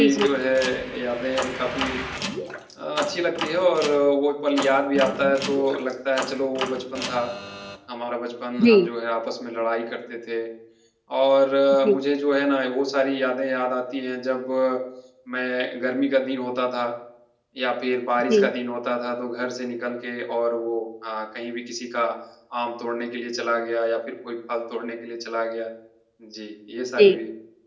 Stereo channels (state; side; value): identical; both; correlation 1.00